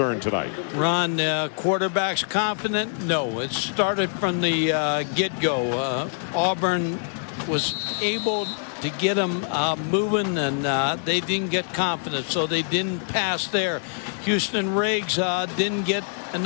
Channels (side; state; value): right; silent; digital silence